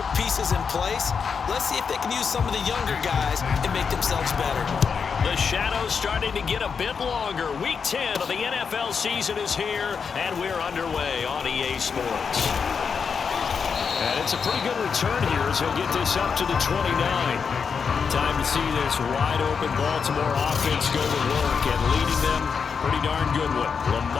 pieces in place. Let's see if they can use some of the younger guys and make themselves better. The shadow's starting to get a bit longer. Week 10 of the NFL season is here, and we're underway on EA Sports. And it's a pretty good return here as he'll get this up to the 29. Time to see this wide-open Baltimore offense go to work, and leading them, pretty darn good one,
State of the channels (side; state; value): right; quieter; 6.0 dB